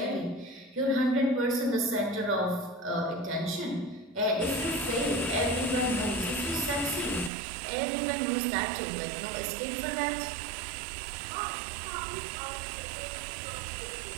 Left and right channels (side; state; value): left; drops out; at 7.3 s